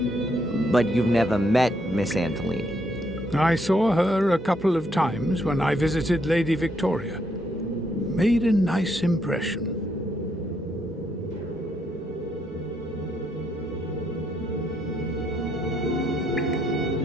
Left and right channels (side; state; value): both; normal; correlation 0.74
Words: but you've never met Miss Antolini. I saw her a couple of times when I visited Lady Victoria. Made a nice impression.